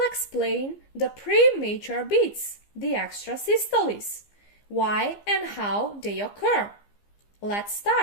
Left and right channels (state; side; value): late; right; 15 ms